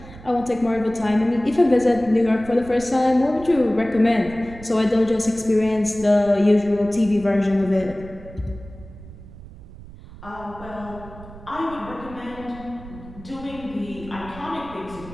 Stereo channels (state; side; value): noise; right; rumble, 17 dB below the sound